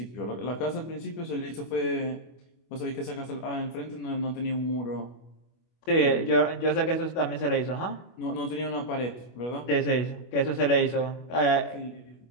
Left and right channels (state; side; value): late; right; 25 ms